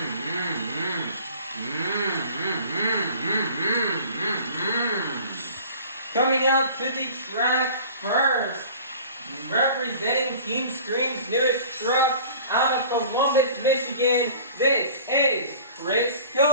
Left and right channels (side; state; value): both; inverted; correlation -0.45